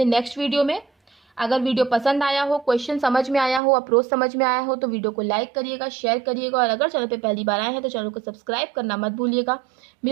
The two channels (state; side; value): drops out; left; at 3.6 s